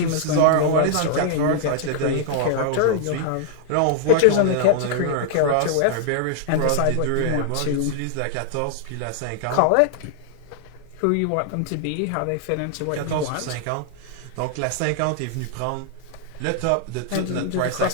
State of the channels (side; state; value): both; different; correlation -0.01